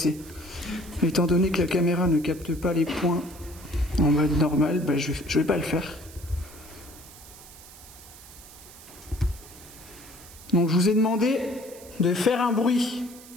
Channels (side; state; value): right; noise; hiss, 19 dB below the sound